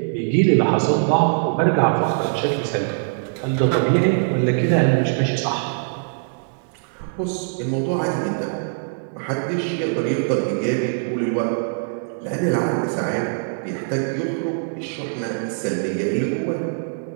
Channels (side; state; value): left; silent; digital silence